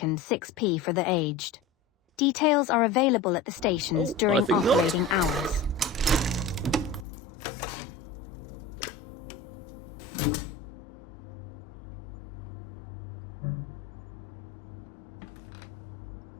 6p for the aged. Details are available at the stations during operating hours.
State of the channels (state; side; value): drops out; right; at 7.1 s